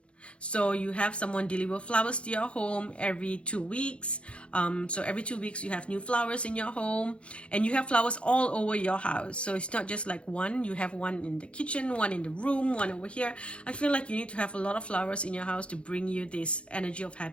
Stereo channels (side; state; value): right; late; 0.059 ms